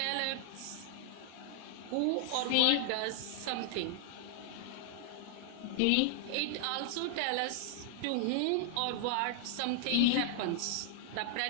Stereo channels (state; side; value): different; both; correlation 0.00